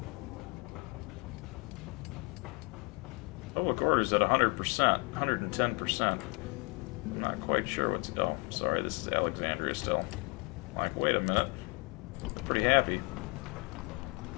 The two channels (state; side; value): quieter; right; 30.6 dB